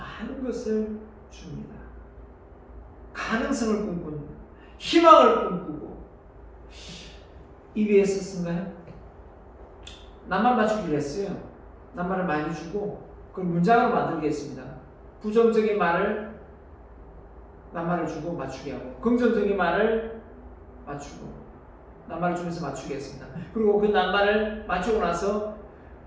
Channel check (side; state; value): both; identical; correlation 1.00